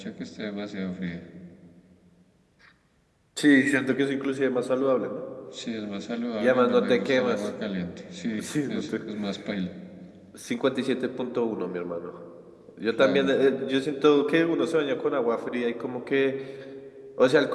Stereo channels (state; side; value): identical; both; correlation 1.00